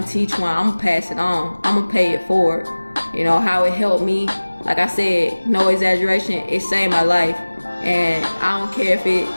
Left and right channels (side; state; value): both; inverted; correlation -1.00